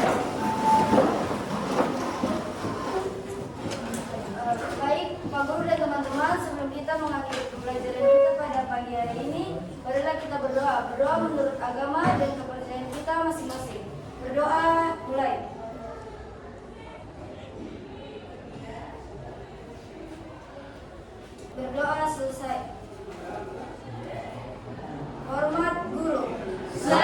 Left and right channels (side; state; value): both; identical; correlation 1.00